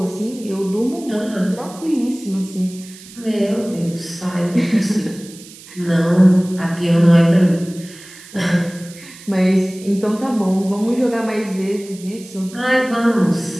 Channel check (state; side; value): noise; right; hiss, 19 dB below the sound